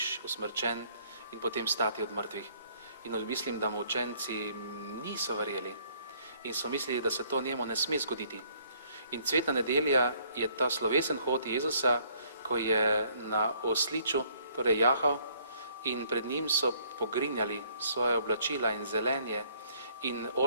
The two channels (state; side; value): inverted; both; correlation -0.63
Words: usmrčen in potem stati od mrtvih. In mislim, da mu učenci niso verjeli in so mislili, da se to njemu ne sme zgoditi. In cvetna nedelja je ta slovesen hod Jezusa, ko je na osliču, torej jahal, in pred njim so pogrinjali svoje oblačila in zelenje in